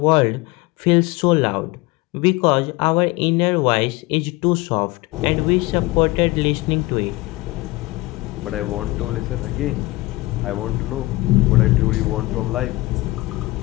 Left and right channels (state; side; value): quieter; right; 21.1 dB